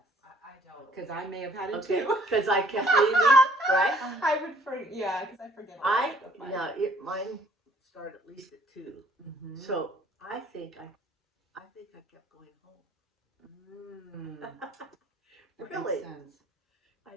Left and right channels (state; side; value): normal; both; correlation 0.59